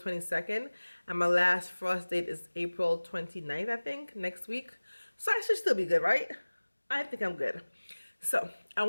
and my last frost date is April 29th, I think, next week. So I should still be good, right? I think I'm good. So I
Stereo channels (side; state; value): both; inverted; correlation -1.00